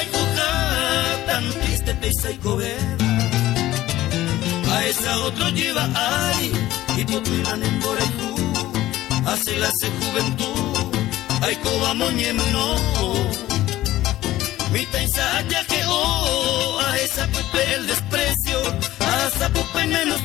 y coja, tan triste pesa y cobera. A esa otro lleva ay, y potuilan en Borejú, hace la se juventud, ay coba moñemno. Mi taisa ya que a esa pupe el desprecio, a esa pupe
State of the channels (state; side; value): quieter; right; 15.3 dB